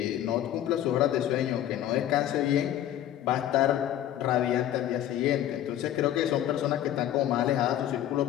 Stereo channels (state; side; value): quieter; right; 12.0 dB